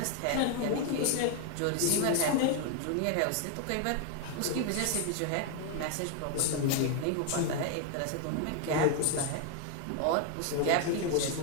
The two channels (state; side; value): different; both; correlation 0.01